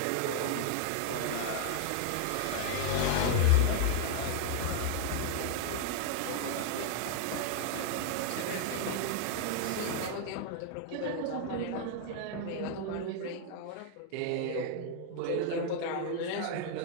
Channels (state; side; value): different; both; correlation 0.00